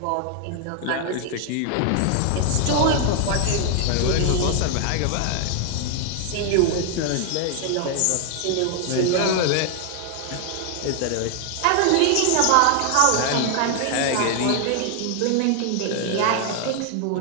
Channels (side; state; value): both; different; correlation 0.00